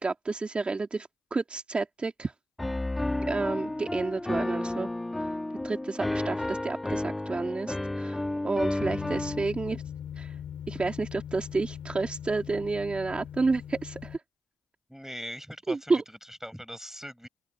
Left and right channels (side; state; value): both; normal; correlation 0.93